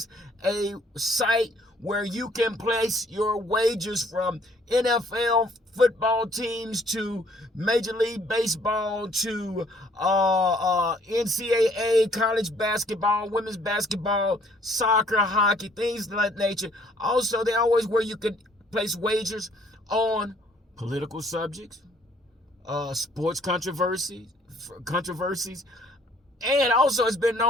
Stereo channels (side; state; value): both; normal; correlation 0.61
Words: a site where you can place your wagers from NFL football teams to Major League Baseball to NCAA, college basketball, women's basketball, soccer, hockey, things of that nature. Also, they always where you can place wagers on political subjects, sports controversies, and also it's been